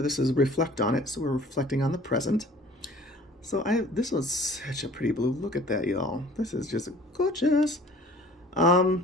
this is Reflect on It, so we're reflecting on the present. So this was such a pretty blue. Look at that, y'all. This is just gorgeous. I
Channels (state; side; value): normal; both; correlation 0.49